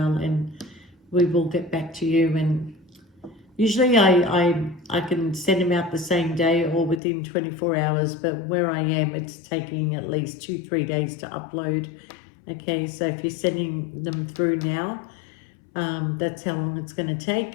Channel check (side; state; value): right; drops out; at 7.0 s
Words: and we will get back to you. And usually I can send them out the same day or within 24 hours, but where I am, it's taking at least 2-3 days to upload. Okay, so if you're sending them through now, that's how long it's going to